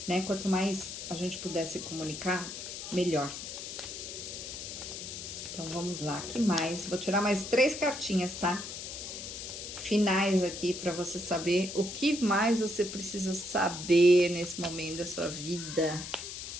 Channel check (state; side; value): noise; left; hiss, 8 dB below the sound